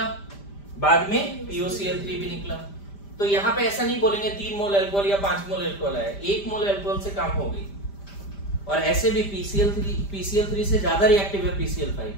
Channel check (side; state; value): right; late; 5.0 ms